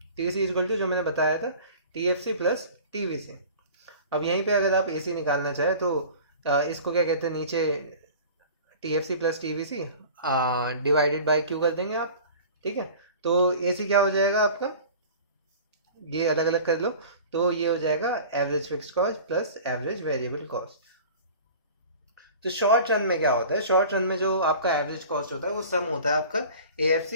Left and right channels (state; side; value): inverted; both; correlation -0.41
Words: टी सी इक्वल टू जो मैंने बताया था T F C plus T V C. अब यहीं पे अगर आप ए सी निकालना चाहे तो इसको क्या कहते हैं, नीचे T F C plus T V C divided by Q कर देंगे आप, ठीक है। तो ए सी क्या हो जाएगा आपका, ये अलग अलग कर लो, तो ये हो जाएगा average fix cost plus average variable cost. तो शॉर्ट रन में क्या होता है, शॉर्ट रन में जो आपका एवरेज कॉस्ट होता है वो सम होता है आपका ए एफ